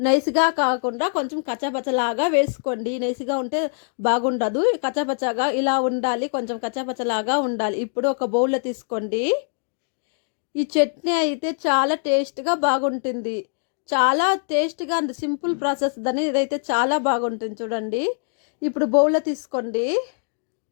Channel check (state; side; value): silent; right; digital silence